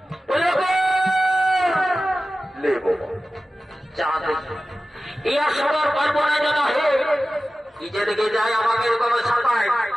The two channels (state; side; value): normal; both; correlation 0.95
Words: সবার পারবো না যেন হে নিজে দিকে যায় আমাকে এরকম সাঁতায়